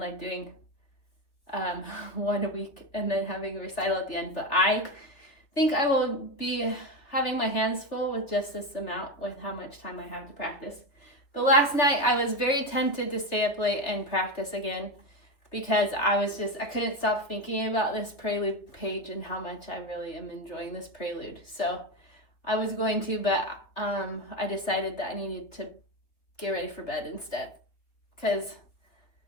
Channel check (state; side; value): late; right; 3.1 ms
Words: doing one a week and then having a recital at the end. But I think I will be having my hands full with just this amount with how much time I have to practice. But last night I was very tempted to stay up late and practice again because I couldn't stop thinking about this prelude page and how much I really am enjoying this prelude. So I was going to, but I decided that I needed to get ready for bed instead. Because